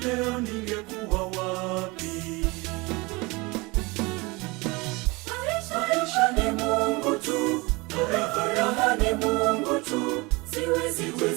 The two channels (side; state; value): left; quieter; 24.9 dB